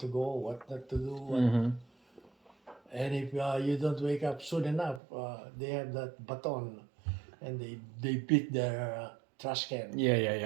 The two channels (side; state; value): left; drops out; at 5.0 s